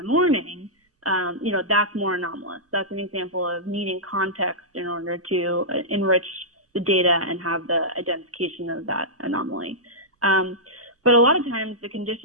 morning, that's more anomalous. That's an example of needing context in order to enrich the data and have the identification of that anomaly. But a lot of times the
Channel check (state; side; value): normal; both; correlation -0.12